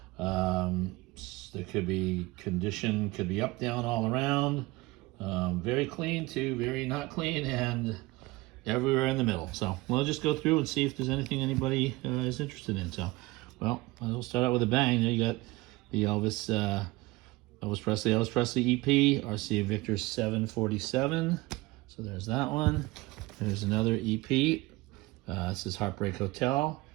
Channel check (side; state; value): left; quieter; 21.2 dB